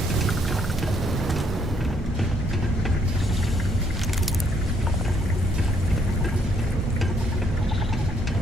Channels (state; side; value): normal; both; correlation 0.69